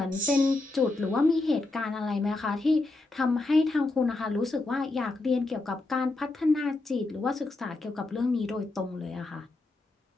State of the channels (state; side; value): quieter; right; 3.1 dB